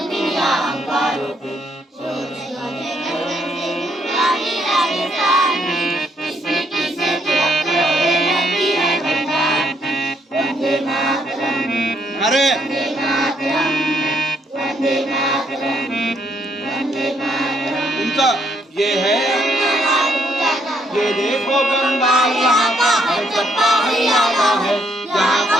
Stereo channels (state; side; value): normal; both; correlation 0.71